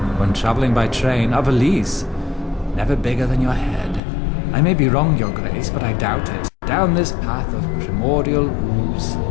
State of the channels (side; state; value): right; drops out; at 4.0 s